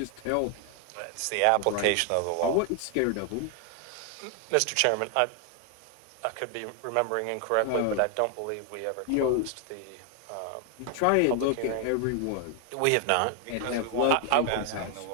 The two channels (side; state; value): both; different; correlation 0.00